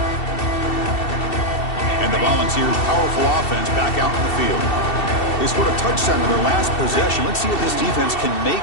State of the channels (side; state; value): right; late; 2.7 ms